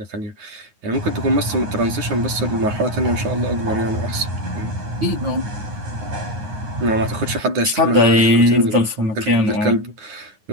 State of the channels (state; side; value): late; left; 9.5 ms